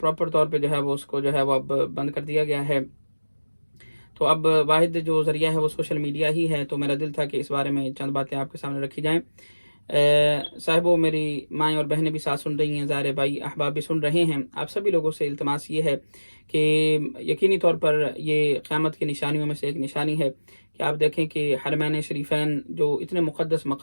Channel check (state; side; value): inverted; both; correlation -1.00